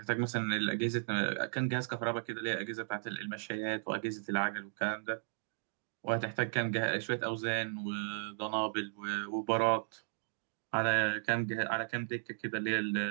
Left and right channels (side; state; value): left; silent; digital silence